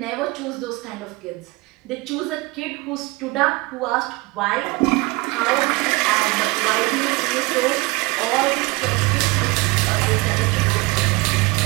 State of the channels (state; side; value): quieter; left; 23.9 dB